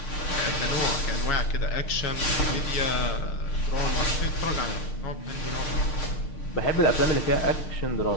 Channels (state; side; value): late; right; 6.6 ms